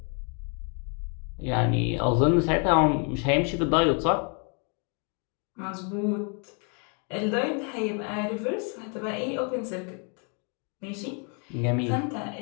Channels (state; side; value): quieter; right; 38.2 dB